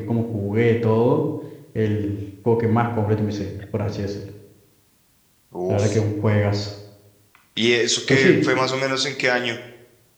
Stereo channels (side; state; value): both; identical; correlation 1.00